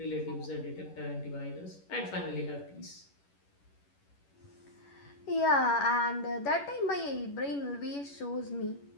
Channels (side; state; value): right; late; 11 ms